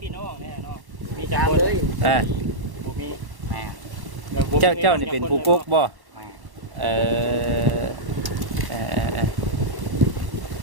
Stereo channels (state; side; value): late; left; 1.1 ms